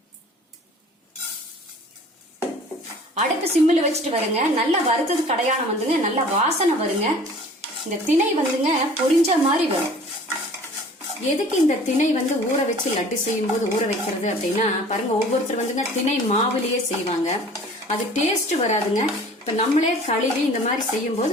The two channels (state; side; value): normal; both; correlation 0.47